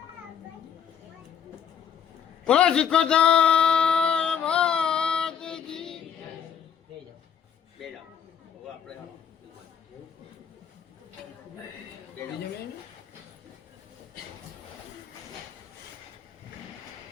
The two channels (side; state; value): right; quieter; 8.1 dB